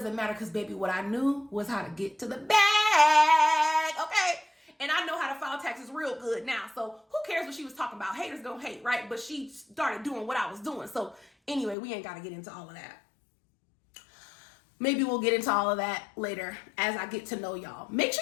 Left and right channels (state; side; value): drops out; right; at 11.8 s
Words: matter because, baby, what I knew was how to get to the bag, okay? And I know how to file taxes real good now. So who cares what she was talking about? Haters gonna hate, right? But she started doing what I was doing. So anyway, we ain't got to get into all of that. Maybe we'll get into all of that later as I get to know y'all. Make